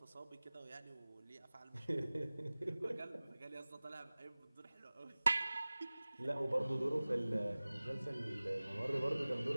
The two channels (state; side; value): inverted; both; correlation -0.99